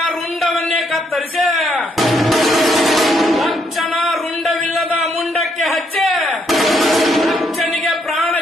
ರುಂಡವನ್ನೇ ಕತ್ತರಿಸಿ ದಕ್ಷನ ರುಂಡವಿಲ್ಲದ ಮುಂಡಕ್ಕೆ ಹಚ್ಚಿ ದಕ್ಷನಿಗೆ ಪ್ರಾಣ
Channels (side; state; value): both; normal; correlation 0.73